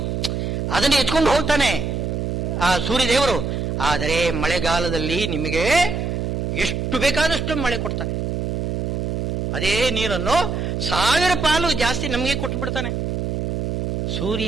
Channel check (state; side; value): noise; right; hum, 1 dB below the sound